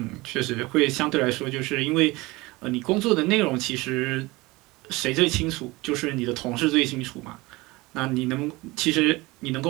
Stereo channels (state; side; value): quieter; left; 22.0 dB